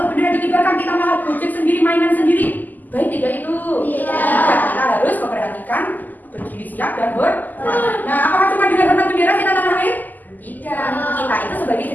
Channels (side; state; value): right; late; 0.084 ms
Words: bendera dikibarkan kita malah gojek sendiri, mainan sendiri, baik tidak itu? Tidak, kita harus memperhatikan berdiri siap dan hormat. Nah, apakah cuma dengan hormat bendera cinta tanah air? Tidak, kita itu sebagai